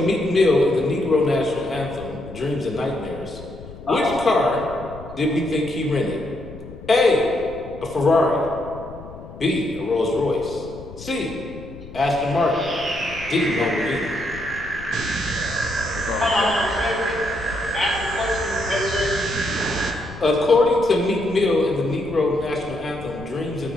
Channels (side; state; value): left; noise; rumble, 15 dB below the sound